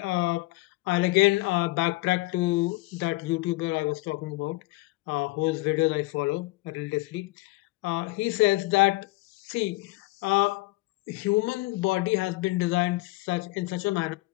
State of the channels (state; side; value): quieter; right; 21.3 dB